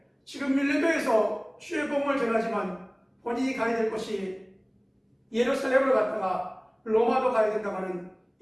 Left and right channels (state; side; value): identical; both; correlation 1.00